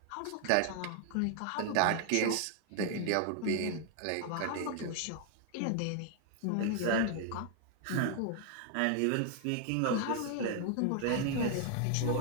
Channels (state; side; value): different; both; correlation 0.00